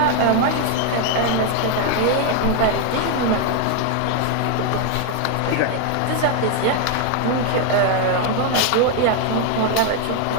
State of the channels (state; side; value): different; both; correlation 0.00